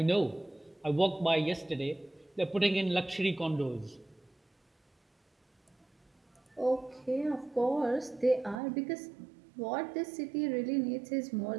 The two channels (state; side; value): drops out; left; at 8.6 s